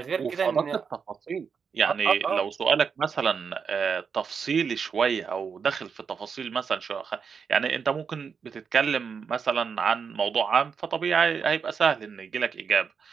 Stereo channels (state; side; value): quieter; left; 6.1 dB